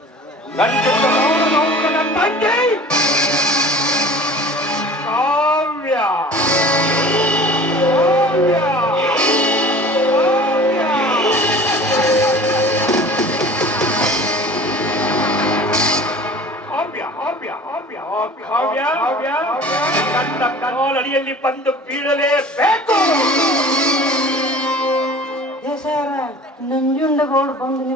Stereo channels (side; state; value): both; normal; correlation 0.42